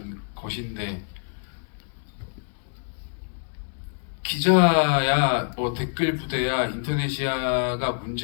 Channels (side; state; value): right; silent; 61 dB below the other